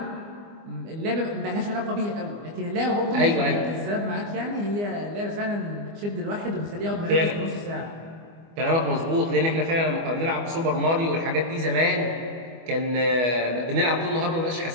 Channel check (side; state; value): left; late; 24 ms